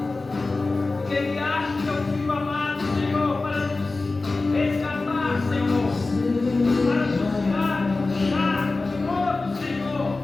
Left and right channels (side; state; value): right; quieter; 3.5 dB